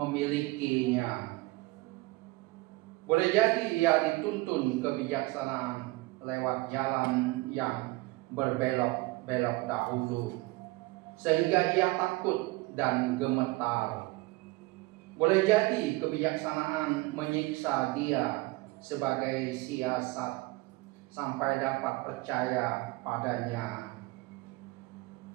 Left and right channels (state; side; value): quieter; left; 22.1 dB